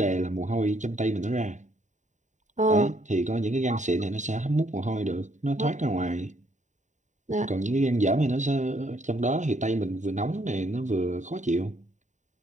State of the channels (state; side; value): late; left; 0.35 ms